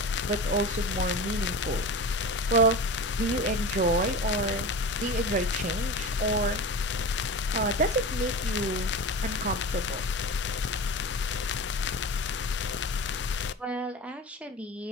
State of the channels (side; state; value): both; normal; correlation 0.30